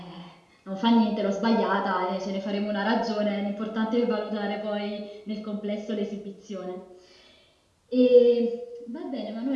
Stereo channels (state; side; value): identical; both; correlation 1.00